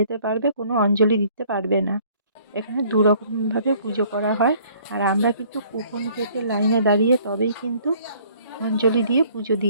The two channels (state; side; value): inverted; both; correlation -0.57